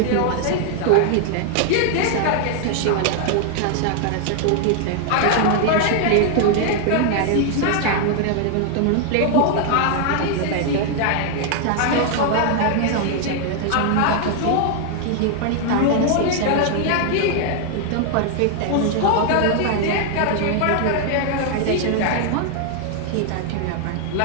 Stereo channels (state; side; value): different; both; correlation 0.00